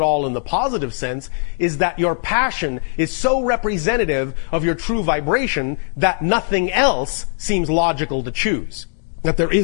all in the positive sense is that your passion is so representative of your true vibration that nothing else seems logical to choose. That there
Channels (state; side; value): silent; right; digital silence